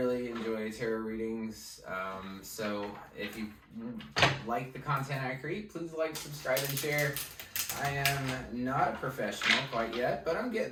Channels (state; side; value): identical; both; correlation 1.00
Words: enjoy tarot readings. So if you like the content I create, please like, subscribe, and share. I am not a professional quite yet, but I'm